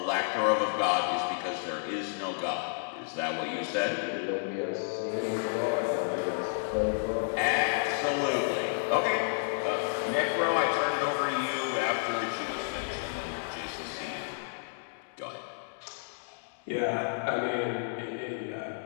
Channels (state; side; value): silent; right; digital silence